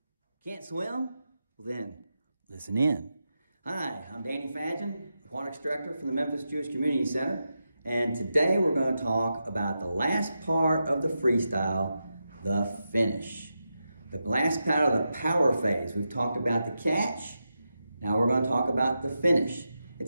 Can't swim? Well then, listen in. Hi, I'm Danny Fadgen, Aquatics Director from the Memphis Jewish Community Center, and today we're going to talk about the last part of the freestyle, the finish. The last part of the power phase. We've talked about the catch, now we're going to talk about the finish.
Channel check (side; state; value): both; inverted; correlation -0.88